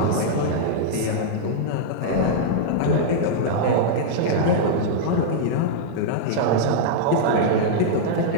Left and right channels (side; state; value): both; different; correlation -0.02